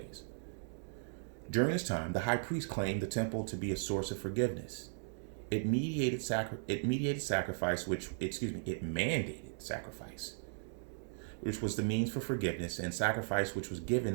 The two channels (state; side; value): silent; left; digital silence